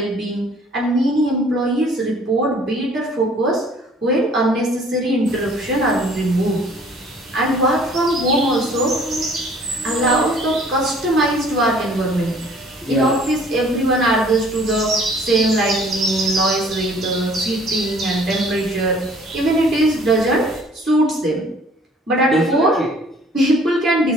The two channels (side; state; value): both; normal; correlation 0.55